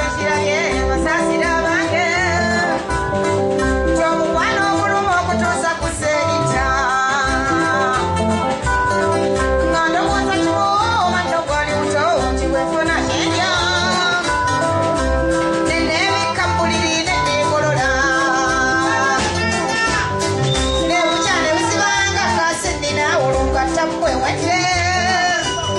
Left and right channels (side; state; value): both; identical; correlation 1.00